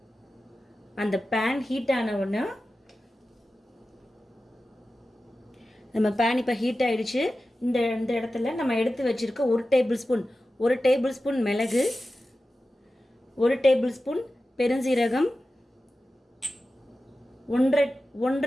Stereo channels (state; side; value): normal; both; correlation 0.94